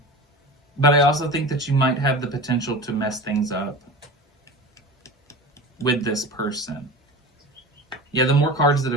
But I also think that you might have the potential to mess things up with this person. Yeah, the more cards that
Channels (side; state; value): both; normal; correlation 0.32